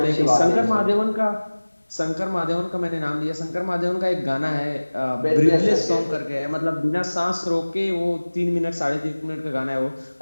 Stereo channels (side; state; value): both; inverted; correlation -1.00